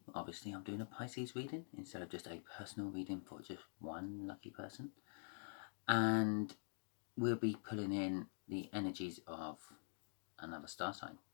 Obviously I'm doing a Pisces reading instead of just a personal reading for just one lucky person. And we'll be pulling in the energies of another star sign.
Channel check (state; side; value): silent; right; digital silence